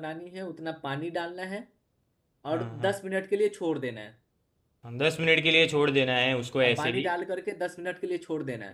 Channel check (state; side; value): identical; both; correlation 1.00